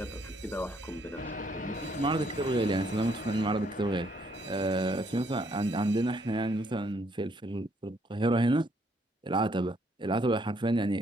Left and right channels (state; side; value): normal; both; correlation 0.69